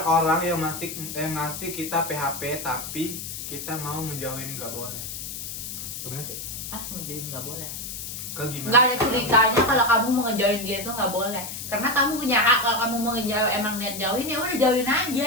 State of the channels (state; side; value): noise; left; hiss, 7 dB below the sound